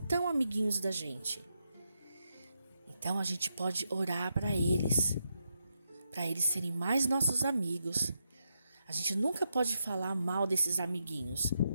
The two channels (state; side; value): inverted; both; correlation -0.83